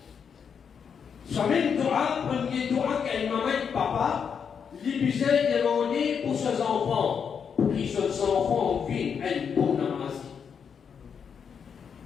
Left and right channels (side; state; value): right; quieter; 6.9 dB